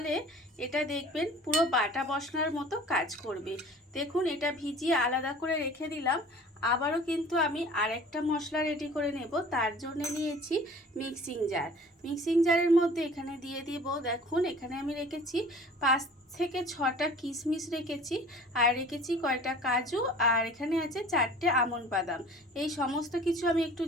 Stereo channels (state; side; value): normal; both; correlation 0.46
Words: এটা দেখবেন পুরো বাটা মশলার মতো কাজ করবে। দেখুন এটা ভিজিয়ে আলাদা করে রেখে দিলাম। আবারও কিন্তু আমি আরেকটা মশলা রেডি করে নেব। তার জন্য নিয়েছি মিক্সিং জার। মিক্সিং জারের মধ্যে এখানে দিয়ে দিব, দেখুন এখানে আমি রেখেছি 5 থেকে 6টা কিশমিশ রেখেছি, আর রেখেছি কয়টা কাজু, আর এখানে আছে 4টে আমন্ড বাদাম। এই সমস্ত কিছু আমি একটু